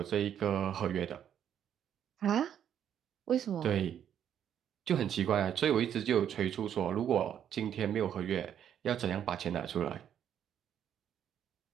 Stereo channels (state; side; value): quieter; left; 9.5 dB